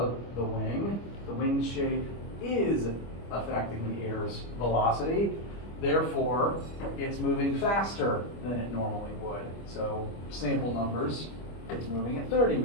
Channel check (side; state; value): right; late; 25 ms